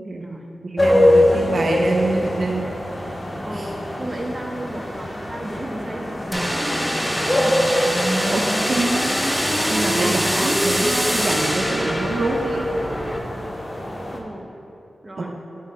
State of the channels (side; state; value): both; normal; correlation 0.95